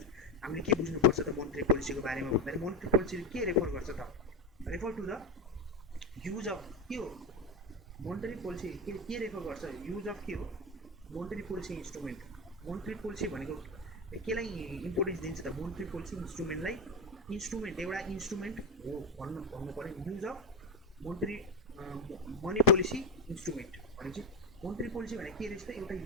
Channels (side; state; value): both; normal; correlation 0.15